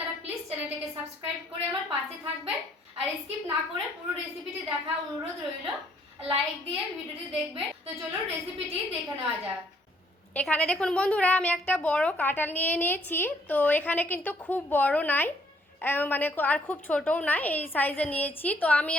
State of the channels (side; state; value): both; normal; correlation 0.66